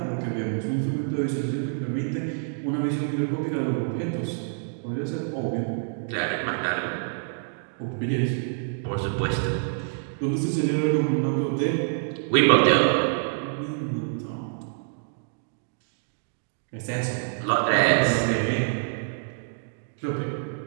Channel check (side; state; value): left; silent; digital silence